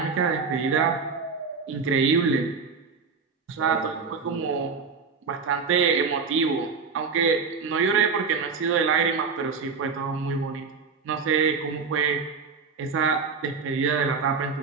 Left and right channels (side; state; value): left; quieter; 5.2 dB